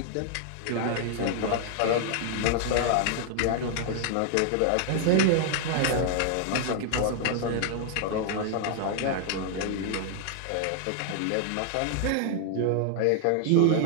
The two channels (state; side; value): different; both; correlation 0.00